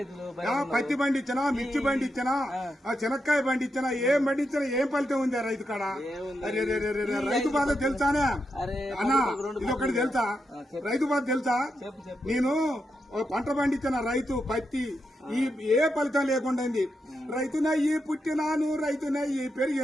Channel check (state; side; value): normal; both; correlation 0.85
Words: పత్తి బండి ఇచ్చినా, మిర్చి బండి ఇచ్చినా, చెనక్కాయ బండి ఇచ్చినా, ఏం బండి ఇచ్చినా ఏం ఫలితం ఉంది రైతు కాడ? రైతు బాధ తెలుసానే అన్నా? ఇది ఒకటి తెలుసా? రైతు బాధ తెలుసా? నేను పంట పండించిన రైతు పత్తి ఏ ఫలితం లేకుండా రైతునయ్యి పుట్టినాను, రైతునయ్యి